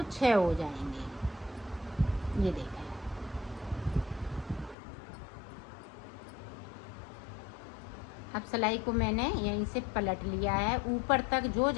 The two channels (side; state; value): right; drops out; at 4.8 s